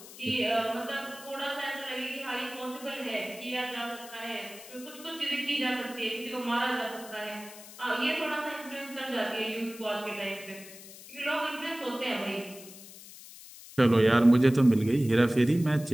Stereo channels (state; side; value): noise; left; hiss, 17 dB below the sound